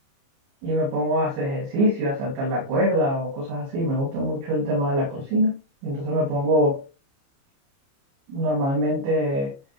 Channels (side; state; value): left; late; 29 ms